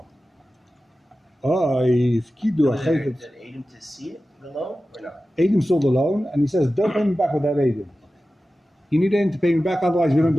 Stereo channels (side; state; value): both; normal; correlation 0.94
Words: If Kidu Did Adam to see it, the loan, or not? Adam saw the loan, and he says, don't pay me back with that Adam. You need Adam to pay me back, otherwise we don't